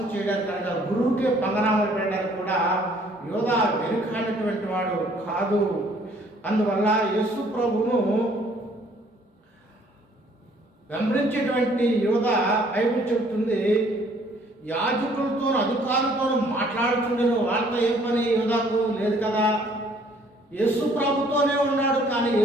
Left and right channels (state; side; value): normal; both; correlation 0.60